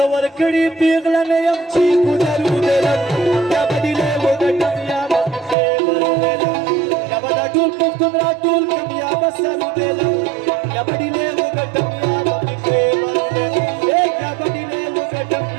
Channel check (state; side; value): drops out; left; at 5.6 s